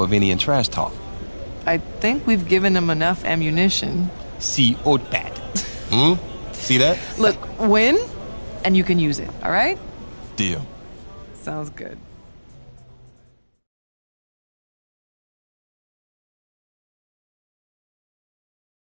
trash talk. I think we've given him enough ammunition. See Otpad. See that? Look, win, and you can use it, all right? Deal. Sounds good.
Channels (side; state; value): both; inverted; correlation -1.00